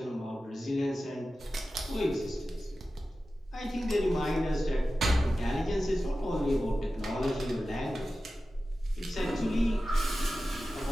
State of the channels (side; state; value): both; normal; correlation 0.94